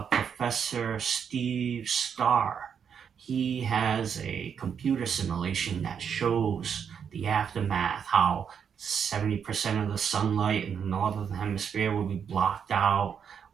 Professor Steve Starr. He has a computer simulation that shows the aftermath, how 70% of the sunlight in the northern hemisphere will be blocked out.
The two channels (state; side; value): quieter; left; 7.4 dB